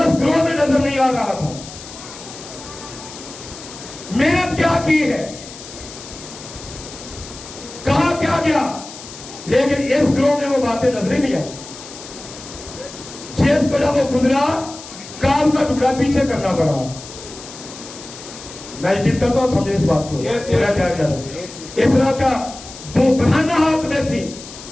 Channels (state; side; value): noise; left; hiss, 15 dB below the sound